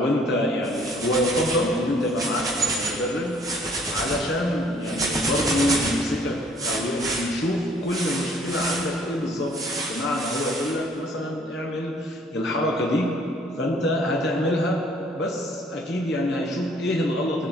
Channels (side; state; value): both; normal; correlation 0.59